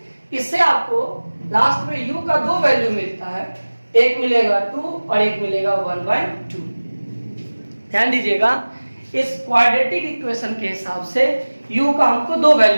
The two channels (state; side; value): inverted; both; correlation -1.00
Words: इससे आपको लास्ट में u का 2 वैल्यू मिलता है, एक मिलेगा 2 और एक मिलेगा 1/2। ध्यान दीजिएगा, इस क्वाड्रेटिक इक्वेशन के हिसाब से u का हमको 2